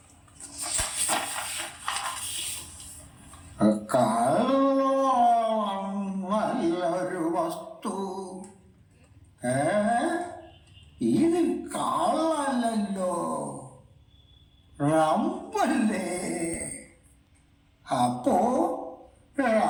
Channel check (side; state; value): both; identical; correlation 1.00